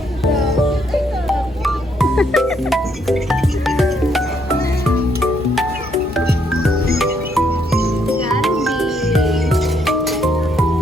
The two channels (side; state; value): both; normal; correlation 0.72